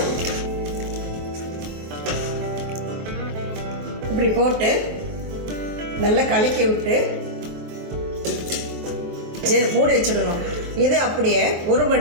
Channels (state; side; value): late; left; 23 ms